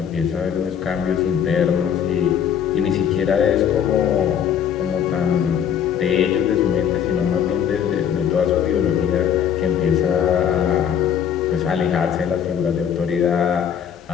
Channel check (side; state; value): right; quieter; 8.6 dB